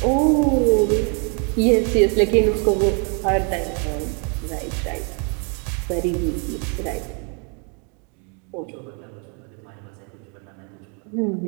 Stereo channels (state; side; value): quieter; left; 37.6 dB